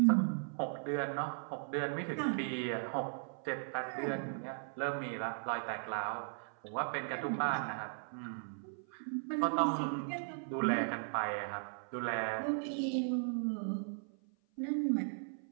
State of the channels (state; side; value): silent; left; 53 dB below the other